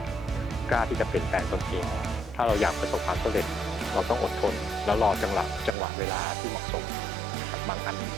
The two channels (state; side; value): drops out; left; at 5.8 s